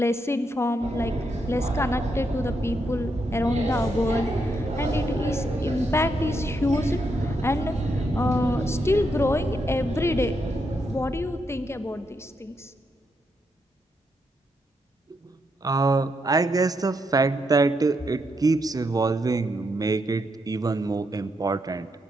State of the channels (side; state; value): both; normal; correlation 0.80